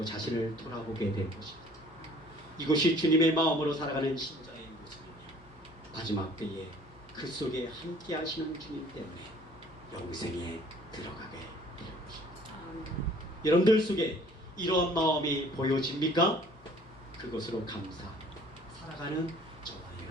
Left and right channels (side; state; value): left; noise; hum, 25 dB below the sound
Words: 자신을 돌아보게 될 것입니다. 이것이 주님의 마음으로 살아가는 신자의 모습이며 마지막 때에 그 속에 함께 하시는 주님 때문에 영생에 들어가게 될 것입니다. 여러분들 속에 이러한 마음이 보여집니까? 그것으로 감사 살아가는 저와